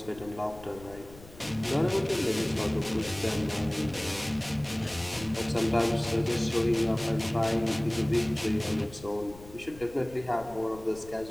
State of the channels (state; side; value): noise; left; rumble, 19 dB below the sound